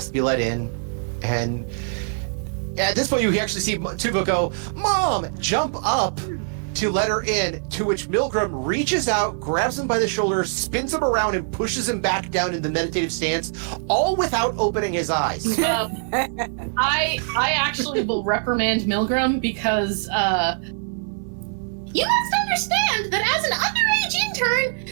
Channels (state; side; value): silent; left; 59 dB below the other